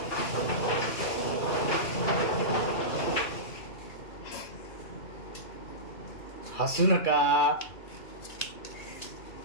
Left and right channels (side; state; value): right; late; 2.4 ms